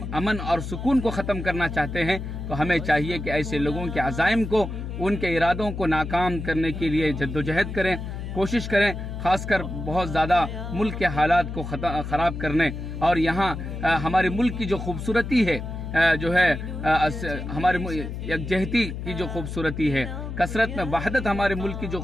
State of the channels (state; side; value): noise; left; hum, 7 dB below the sound